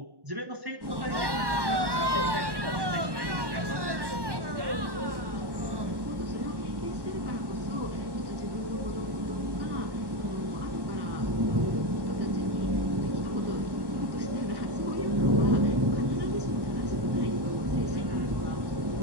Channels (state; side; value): late; left; 1.1 ms